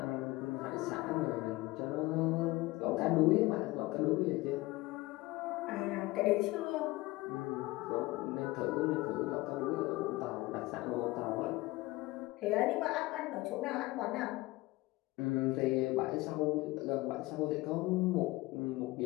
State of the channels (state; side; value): quieter; right; 20.4 dB